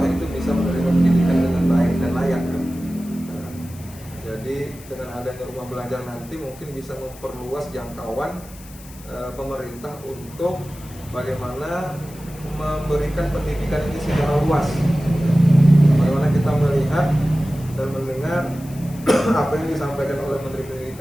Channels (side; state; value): left; noise; hiss, 20 dB below the sound